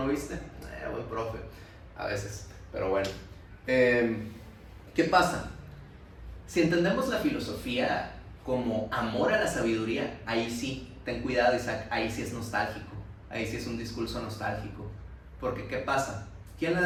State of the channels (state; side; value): identical; both; correlation 1.00